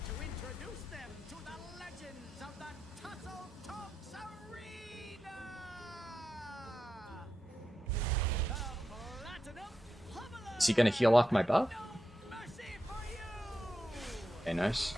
to introduce them to the legends of the Tussle Talks Arena! The Platinum Pummeler! Is he gonna heal off my buff? Mercy for you! Okay, nice.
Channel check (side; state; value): both; normal; correlation 0.88